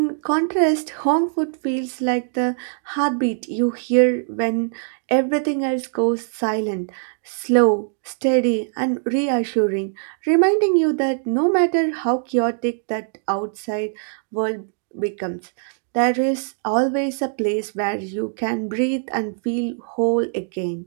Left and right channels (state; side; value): silent; left; digital silence